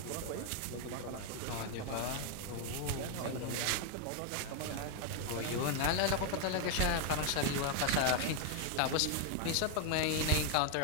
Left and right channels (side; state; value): both; different; correlation 0.01